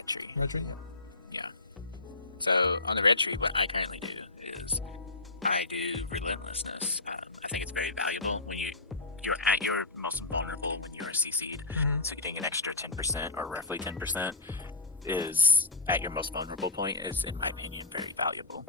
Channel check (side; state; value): right; quieter; 3.1 dB